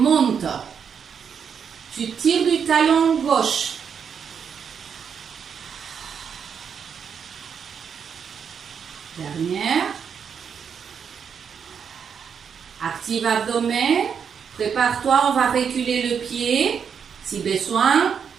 Tu tires du talon gauche. Dernière. Active abdomen. Prépare-toi, on va reculer le pied. Si besoin,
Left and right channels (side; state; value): left; quieter; 7.0 dB